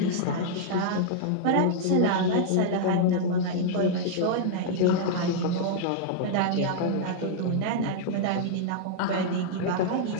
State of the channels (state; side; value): different; both; correlation -0.01